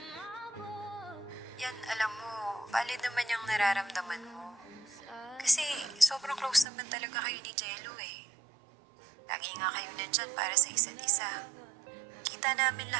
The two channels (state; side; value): drops out; left; at 6.7 s